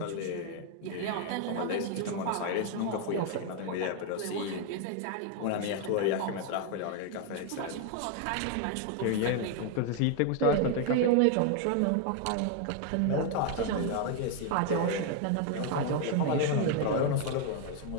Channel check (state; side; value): different; both; correlation 0.01